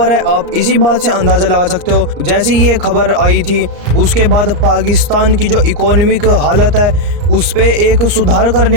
है आप इसी बात से अंदाज़ा लगा सकते हो। जैसे ये खबर आई थी उसके बाद पाकिस्तान की जो इकोनॉमिक हालत है उस पर एक सुधार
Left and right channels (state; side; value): late; left; 34 ms